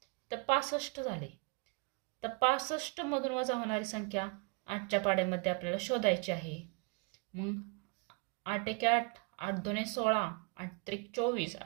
तर 65 झाले. तर 65 मधून वजा होणारी संख्या 8च्या पाड्यामध्ये आपल्याला शोधायची आहे. मग 8 एके 8, 8 दुने 16, 8 त्रिक 24,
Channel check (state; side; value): quieter; left; 31.6 dB